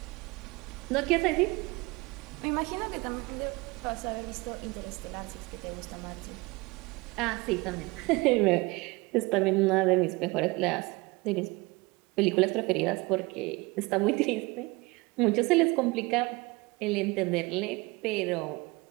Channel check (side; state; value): left; quieter; 24.2 dB